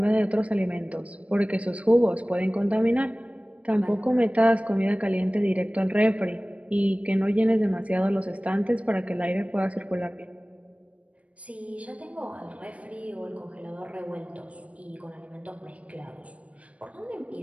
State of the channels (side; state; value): left; late; 0.065 ms